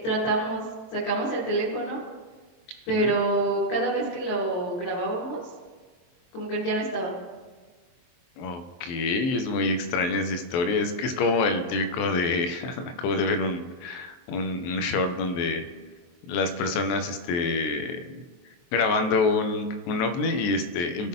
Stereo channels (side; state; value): right; late; 23 ms